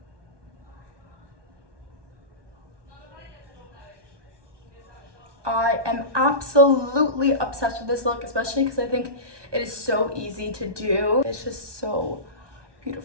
I am absolutely obsessed with this look, especially because I think it is so easy to do. It's just so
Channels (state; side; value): late; left; 1.2 ms